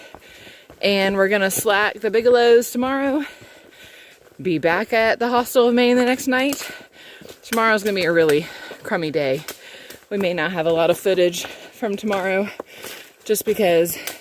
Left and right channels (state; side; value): identical; both; correlation 1.00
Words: And we're gonna slack the Bigelows tomorrow. Be back at the Hostel of Maine the next night. Tomorrow's gonna be a really crummy day. We may not have a lot of footage from tomorrow just because